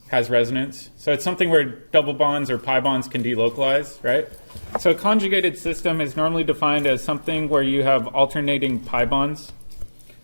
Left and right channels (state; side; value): inverted; both; correlation -1.00